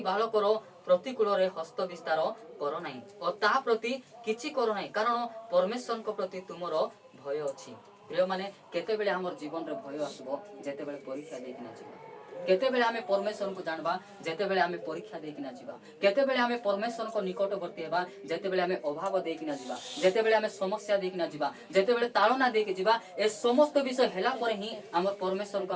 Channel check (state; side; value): identical; both; correlation 1.00